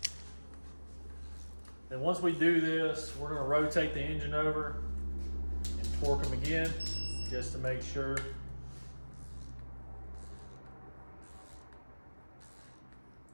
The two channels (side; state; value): both; inverted; correlation -1.00